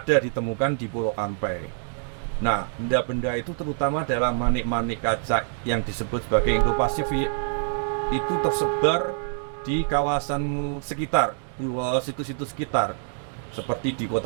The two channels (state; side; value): silent; left; digital silence